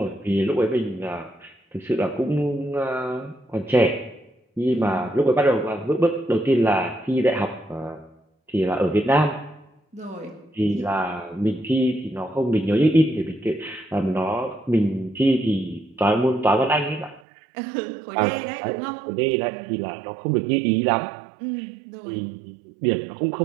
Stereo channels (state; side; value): drops out; left; at 17.2 s